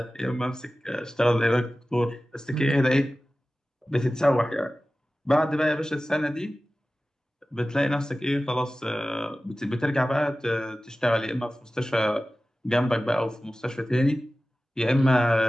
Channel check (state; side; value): normal; both; correlation 0.96